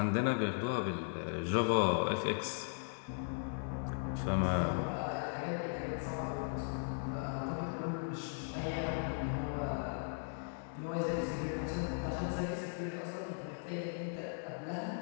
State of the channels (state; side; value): silent; right; digital silence